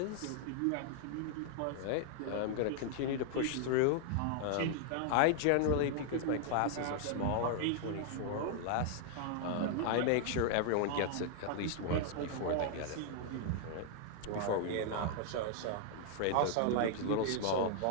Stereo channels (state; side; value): different; both; correlation -0.01